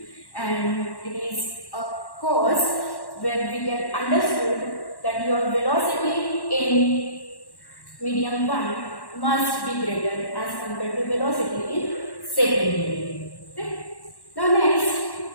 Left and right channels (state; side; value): late; right; 1.1 ms